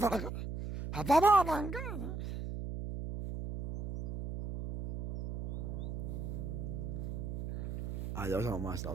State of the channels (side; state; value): right; noise; hum, 5 dB below the sound